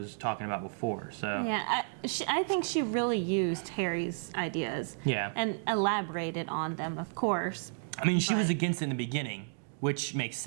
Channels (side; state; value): left; silent; digital silence